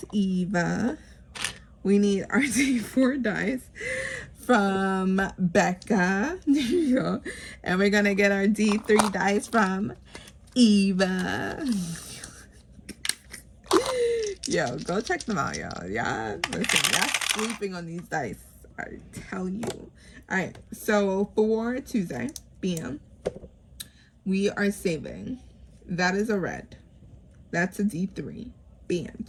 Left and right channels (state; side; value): identical; both; correlation 1.00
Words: Eva. We need our D4 dice from Becca. There you go. And we're gonna get our D3 dice from Eva. Yo, go check them out, y'all. Yeah, listen, y'all sleeping on these dice, I tell you. All right, so for Tuesday, bam, we are saving. That is a red. That's a D3. Bam,